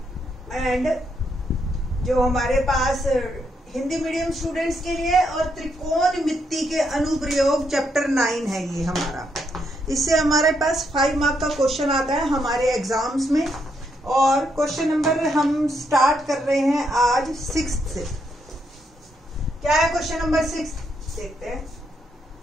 and जो हमारे पास हिंदी मीडियम स्टूडेंट्स के लिए और त्रिकोणमिति के अनुप्रयोग चैप्टर 9 है ये हमारा। इससे हमारे पास 5 मार्क का क्वेश्चन आता है हमारे एग्जाम्स में। और क्वेश्चन नंबर हम स्टार्ट कर रहे हैं आज 6 से। क्या है क्वेश्चन नंबर 6? देखते हैं।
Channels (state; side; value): normal; both; correlation 0.77